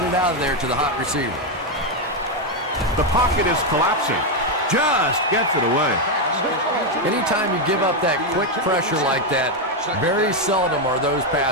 it out of there to the hot receiver. The pocket is collapsing. Just gets it away. Anytime you give up that quick pressure like that, very seldom are those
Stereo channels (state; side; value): normal; both; correlation 0.04